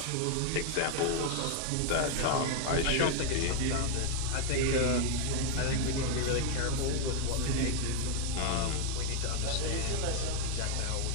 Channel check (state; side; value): different; both; correlation 0.00